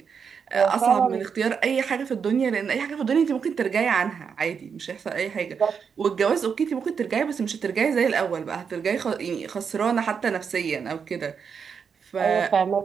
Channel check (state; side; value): quieter; left; 6.4 dB